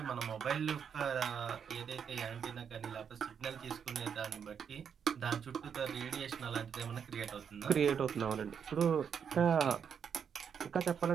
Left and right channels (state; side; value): quieter; left; 7.3 dB